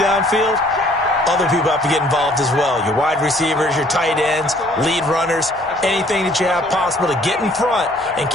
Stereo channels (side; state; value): both; normal; correlation 0.59